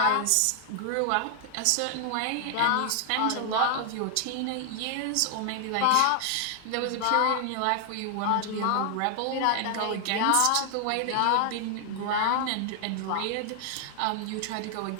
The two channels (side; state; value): both; different; correlation 0.00